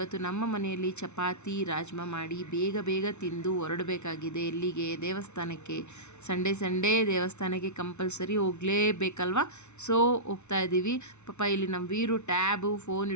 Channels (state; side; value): late; right; 0.82 ms